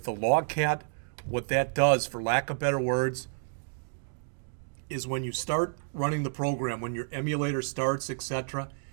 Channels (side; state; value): left; silent; digital silence